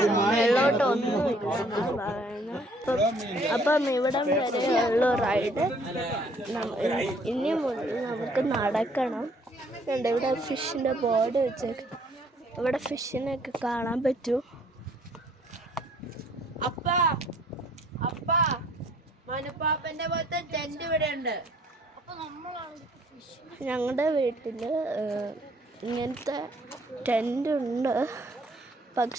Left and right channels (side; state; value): both; normal; correlation 0.61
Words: മേലോട്ട് ഒന്നുമില്ല. അപ്പം ഇവിടം വരെയുള്ള റൈഡ് ഇനി മുതൽ നമുക്ക് നടക്കണം. ഇവിടെ ഫിഷിന്റെ ബോർഡ് വെച്ചേക്ക്. ഇവിടെ ഫിഷിനൊക്കെ കാണാൻ പറ്റും. മനുപ്പാപ്പന്റെ പോലത്തെ ടെന്റ് ഇവിടെ ഉണ്ട്. ഞങ്ങളുടെ വീട്ടിൽ ഇങ്ങനത്തെ ടെൻ്റ് ഉണ്ട്,